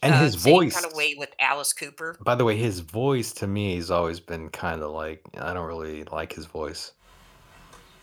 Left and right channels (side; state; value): both; identical; correlation 1.00